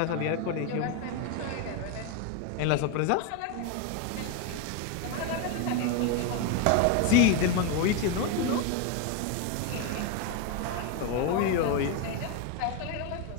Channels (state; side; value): different; both; correlation 0.02